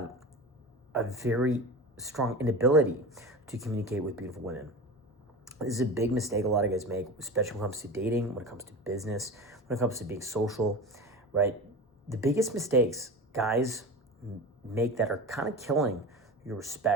a very strong inability to communicate with beautiful women. This is a big mistake a lot of guys make, especially when it comes to dating, when it comes to business, when it comes to being social, right? The biggest mistakes guys make that are kind of killing your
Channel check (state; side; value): normal; both; correlation 0.30